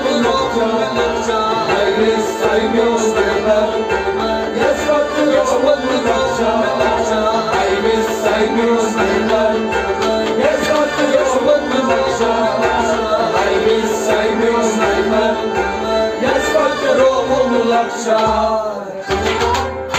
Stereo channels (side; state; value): both; identical; correlation 1.00